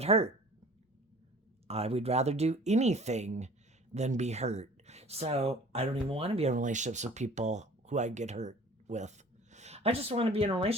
hurt. I would rather do anything than be hurt. So I don't even want to be in relationships with people who I get hurt with. I just want to be in a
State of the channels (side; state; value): both; normal; correlation 0.47